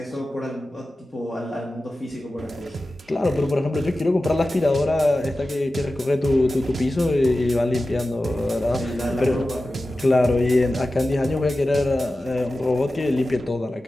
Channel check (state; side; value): normal; both; correlation 0.94